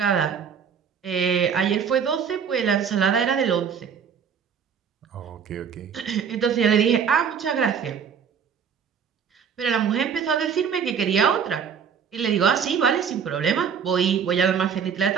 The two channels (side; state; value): left; quieter; 7.1 dB